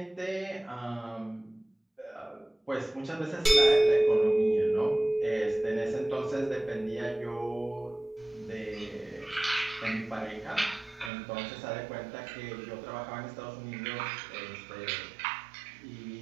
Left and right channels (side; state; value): left; drops out; at 11.1 s